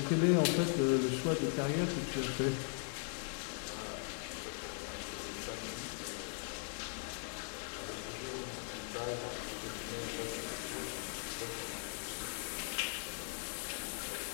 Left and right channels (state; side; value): silent; right; 52 dB below the other